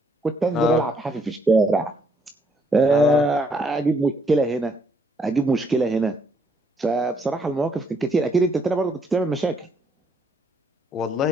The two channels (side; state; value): both; normal; correlation 0.70